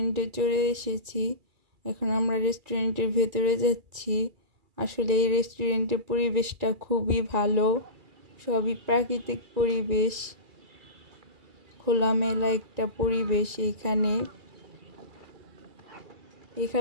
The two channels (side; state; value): left; late; 2.3 ms